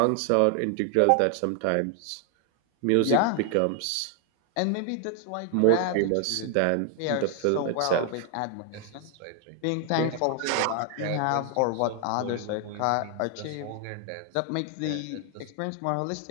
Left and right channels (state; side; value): different; both; correlation 0.00